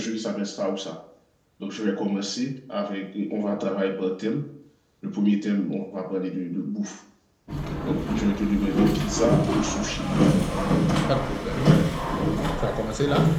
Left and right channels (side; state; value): both; identical; correlation 1.00